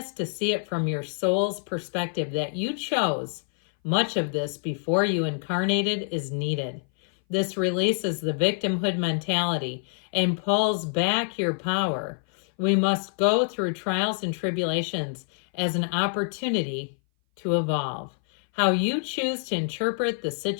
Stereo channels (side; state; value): right; silent; 58 dB below the other